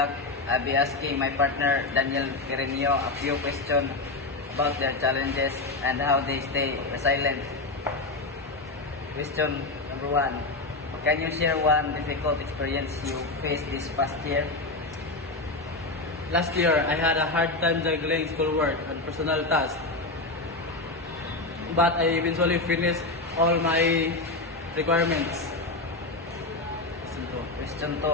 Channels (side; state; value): right; quieter; 3.2 dB